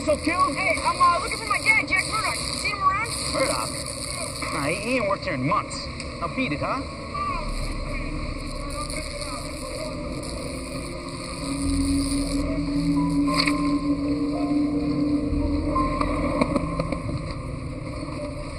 Killed? Hey, I'm looking for my dad, Jack Murdoch. You seen him around? Murdoch? Nah, he ain't worked here in months. Now beat it, huh?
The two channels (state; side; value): identical; both; correlation 1.00